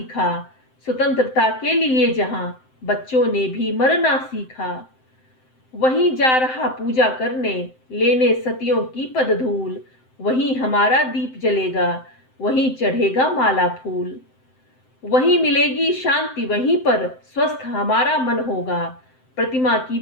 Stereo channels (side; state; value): right; late; 7.7 ms